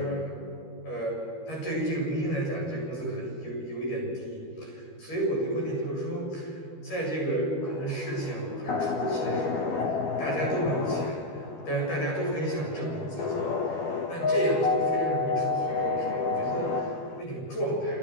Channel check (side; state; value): right; late; 12 ms